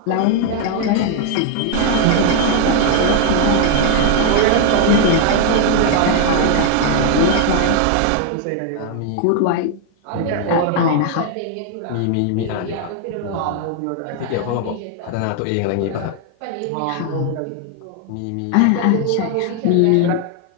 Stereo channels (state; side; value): different; both; correlation 0.00